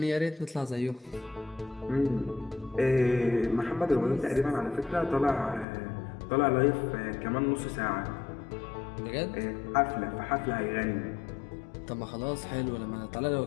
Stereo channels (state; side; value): drops out; right; at 5.7 s